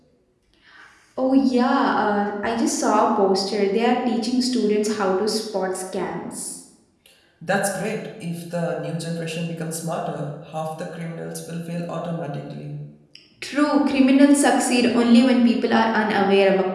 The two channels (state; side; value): identical; both; correlation 1.00